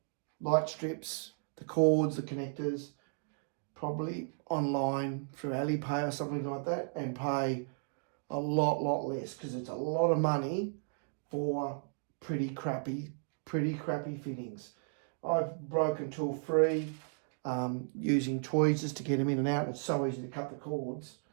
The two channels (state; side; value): silent; left; digital silence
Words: light strips, the cords, the connectors, probably online through Alipay or something like that, and pay a lot less, because it's a lot of money for pretty crappy fittings. I've broken tool free, using tweezers to get them in and out. It's so easy to cut the cords.